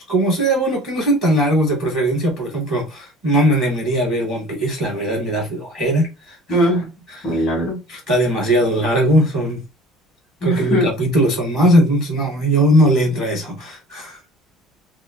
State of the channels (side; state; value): both; normal; correlation 0.46